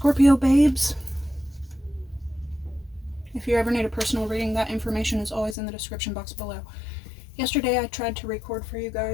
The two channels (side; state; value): right; drops out; at 5.6 s